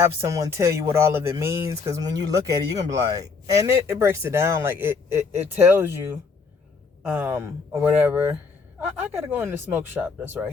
someone tell you what all of it means, because when you look at it, you're gonna be like, and it breaks it down, like it tells you, or whatever. I gotta go in the smoke shop that's right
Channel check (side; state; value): right; quieter; 4.8 dB